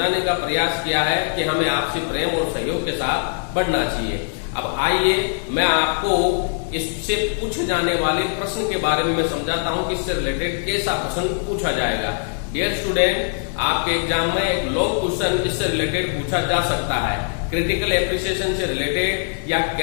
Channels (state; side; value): silent; right; digital silence